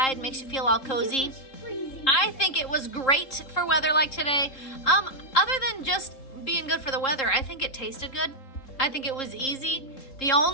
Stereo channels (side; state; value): right; late; 3.8 ms